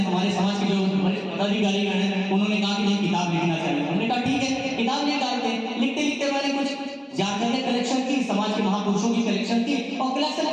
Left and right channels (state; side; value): identical; both; correlation 1.00